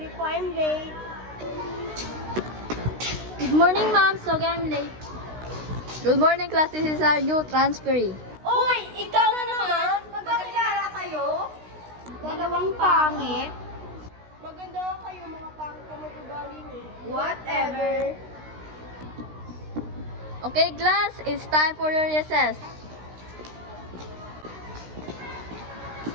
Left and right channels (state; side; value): late; left; 16 ms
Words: po, I'm late. Good morning, ma'am. Sorry I'm late. Good morning, class. This is our new transferee. Uy, ikaw na naman? Magkakilala kayo? Dalawang pangit? Maganda nga kayo, mga pangit na mag-ugali niyo. Whatever. Okay, class. It's time for your recess.